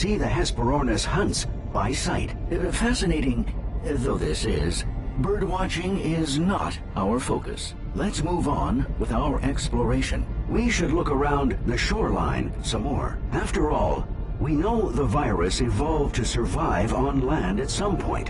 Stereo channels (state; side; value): identical; both; correlation 1.00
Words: the Hesperornis hunts by sight. Fascinating though this is, birdwatching is not our focus. Let's move on with our exploration. We should look around the shoreline some more. After all, we know the virus evolved to survive on land at some point,